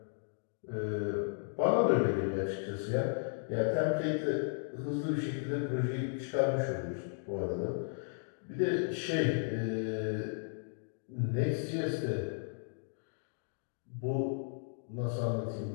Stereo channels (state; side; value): silent; right; digital silence